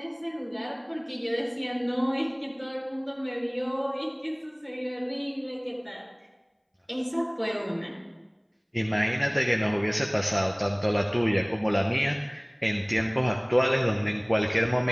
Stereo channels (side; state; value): both; identical; correlation 1.00